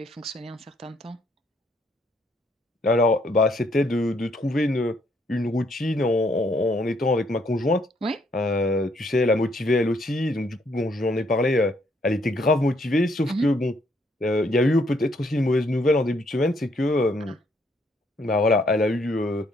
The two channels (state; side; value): normal; both; correlation 0.70